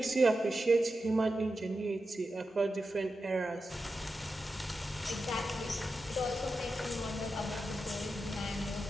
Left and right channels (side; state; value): both; normal; correlation 0.90